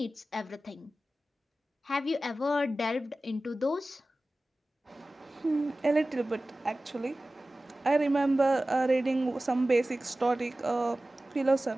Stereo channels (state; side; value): normal; both; correlation 0.96